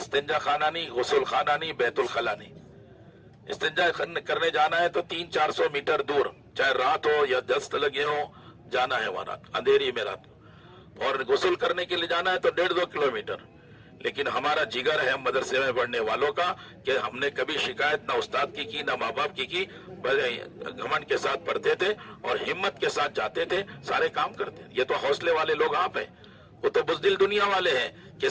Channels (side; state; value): both; identical; correlation 1.00